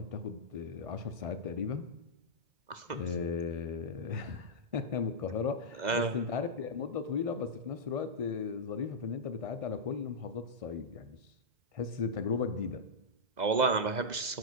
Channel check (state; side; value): late; left; 2.0 ms